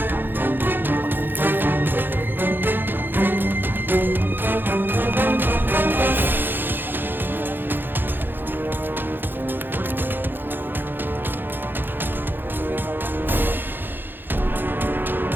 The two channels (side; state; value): left; late; 0.097 ms